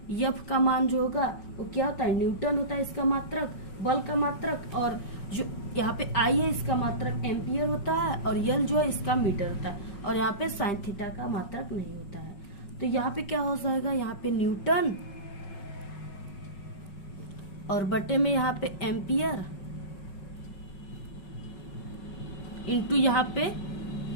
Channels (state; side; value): late; right; 5.4 ms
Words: F का मान जो होगा वो क्या होता है, न्यूटन होता है इसका मात्रक, बल का मात्रक। और जो यहाँ पे I है इसका मात्रक एम्पियर होता है और L जो है इसका मीटर होता है। और यहाँ पे साइन थीटा का मात्रक नहीं होता है। तो यहाँ पे क्या हो जाएगा, यहाँ पे न्यूटन और बटे में यहाँ पे एम्पियर इंटू यहाँ पे